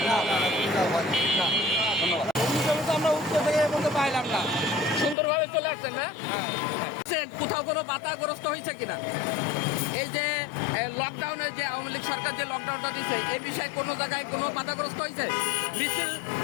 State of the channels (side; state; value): right; drops out; at 5.2 s